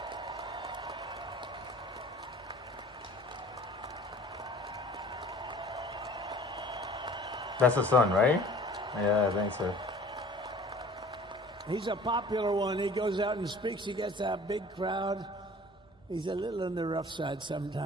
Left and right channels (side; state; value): both; normal; correlation 0.47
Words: That's the son, right? Yeah, I think so. He's a popular one. He goes out and speaks. He gets a big crowd. He's a little on the rough side